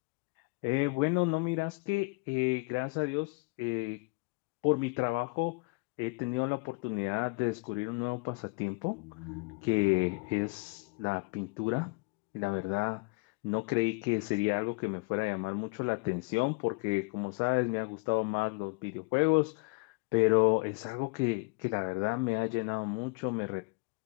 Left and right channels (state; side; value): quieter; right; 28.3 dB